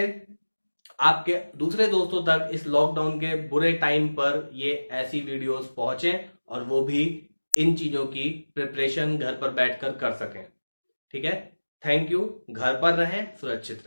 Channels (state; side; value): inverted; both; correlation -1.00